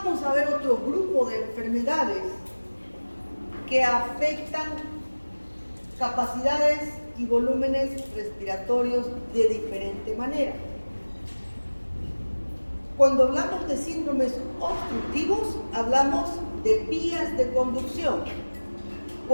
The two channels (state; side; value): inverted; both; correlation -1.00